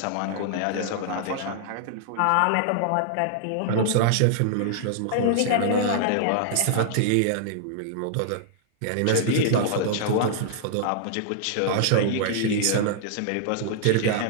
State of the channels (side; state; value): both; different; correlation -0.01